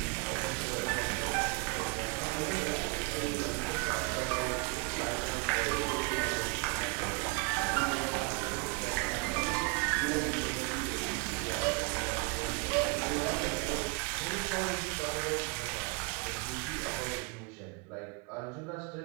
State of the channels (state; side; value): quieter; left; 31.5 dB